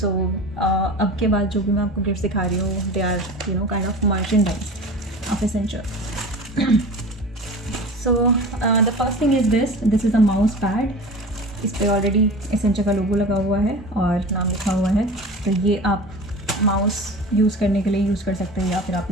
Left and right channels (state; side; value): normal; both; correlation 0.35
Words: अब के बाद जो भी मैं आपको गिफ्ट्स दिखा रही हूँ they are kind of merchandise of Accenture. So the first thing is this is a mouse pad. इस पे ऑलरेडी एसेंचर का लोगो लगा हुआ है और नाम लिखा हुआ है। तो ये आप माउस यूज़ करने के लिए यूज़ कर सकते हो, या फिर आप